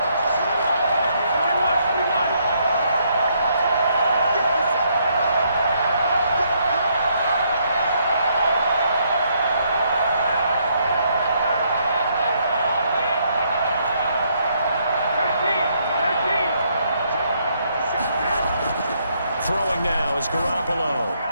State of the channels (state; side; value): inverted; both; correlation -0.72